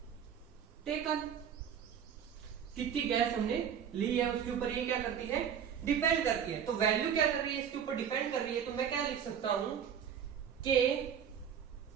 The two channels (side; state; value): left; quieter; 8.2 dB